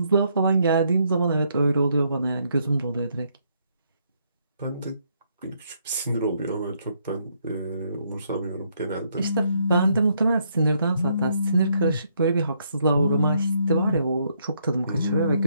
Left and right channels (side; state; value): both; inverted; correlation -0.73